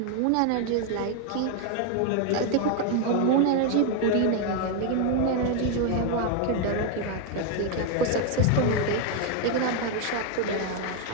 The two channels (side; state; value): both; different; correlation 0.01